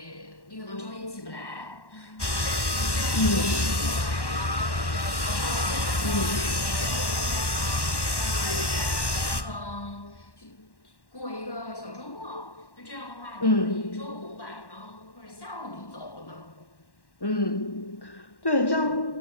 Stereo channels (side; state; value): right; late; 1.1 ms